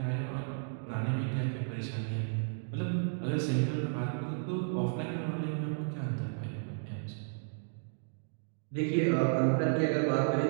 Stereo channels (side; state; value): left; silent; digital silence